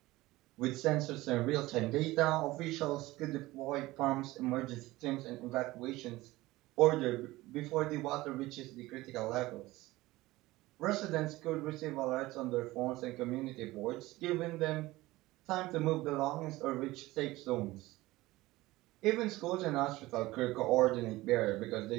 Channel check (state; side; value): quieter; left; 18.8 dB